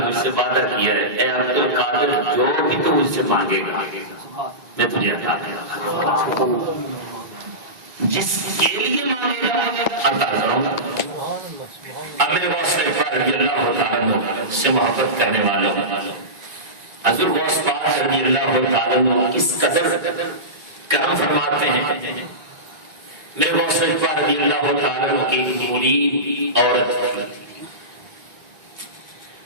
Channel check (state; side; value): late; left; 1.9 ms